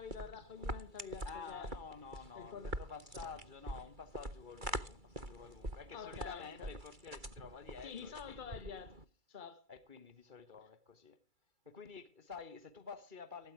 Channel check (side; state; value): left; late; 2.3 ms